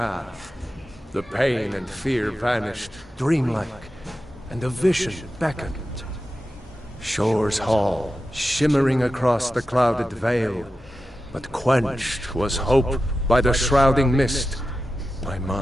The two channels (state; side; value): normal; both; correlation 0.92